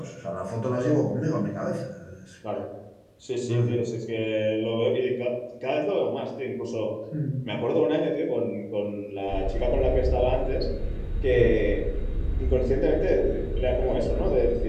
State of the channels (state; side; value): identical; both; correlation 1.00